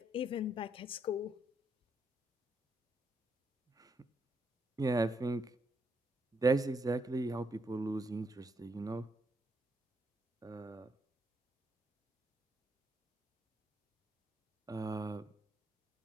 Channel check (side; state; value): both; normal; correlation 0.77